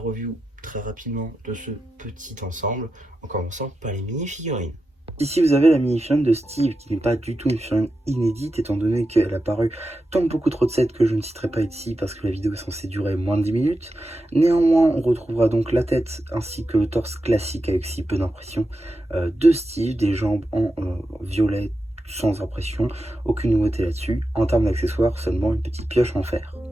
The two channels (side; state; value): both; normal; correlation 0.89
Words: très rapidement de ce petit ensemble, en commençant par les mini-figurines. Ici vous avez la mini-figurine de Steve qui n'est pas du tout une figurine inédite étant donné qu'elle a paru dans beaucoup trop de sets que je ne citerai pas ici parce que la vidéo est censée durer moins de 10 minutes. Néanmoins on retrouvera donc la tête ainsi que le torse classique avec si peu d'impression de Steve, des jambes en violet sans impression, aucune nouveauté là-dessus. En termes d'accessoires, seulement une petite pioche en fer.